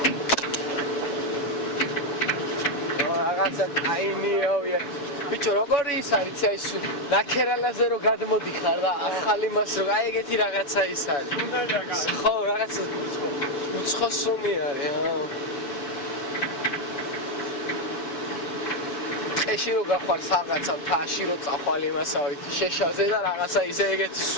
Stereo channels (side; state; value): right; late; 6.9 ms